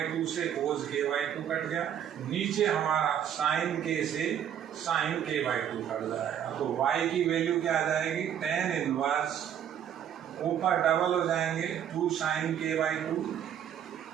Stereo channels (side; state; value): left; quieter; 9.5 dB